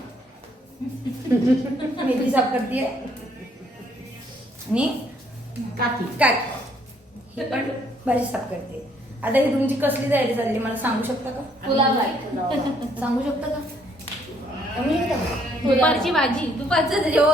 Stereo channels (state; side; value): normal; both; correlation 0.67